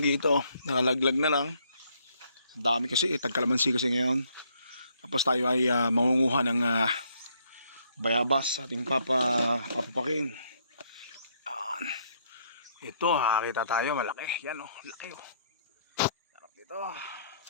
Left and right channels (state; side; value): inverted; both; correlation -0.69